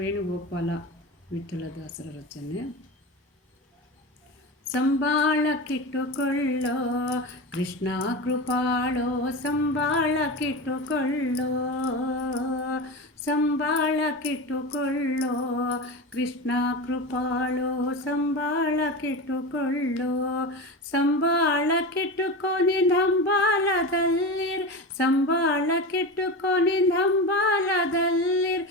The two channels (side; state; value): both; normal; correlation 0.24